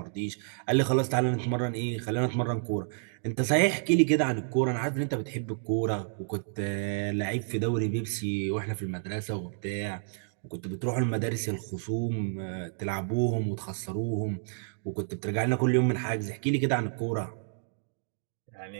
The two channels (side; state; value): left; silent; digital silence